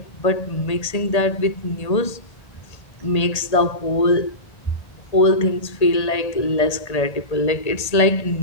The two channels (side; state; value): right; late; 1.8 ms